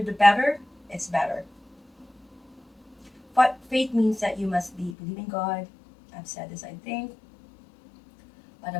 the better, it's better. But faith means that you must be believing God. I've said this, I think, but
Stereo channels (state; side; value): drops out; right; at 5.0 s